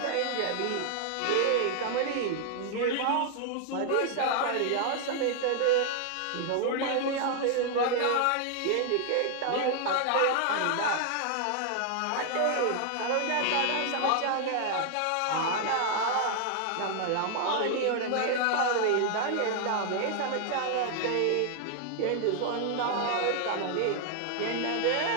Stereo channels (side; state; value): both; different; correlation 0.00